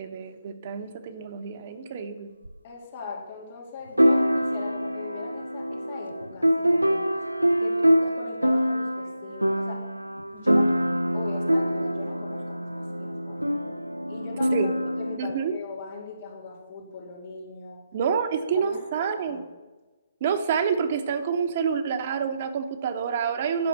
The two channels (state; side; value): inverted; both; correlation -0.87